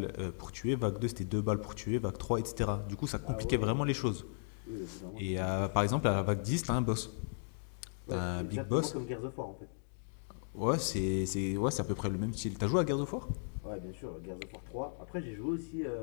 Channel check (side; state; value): right; silent; digital silence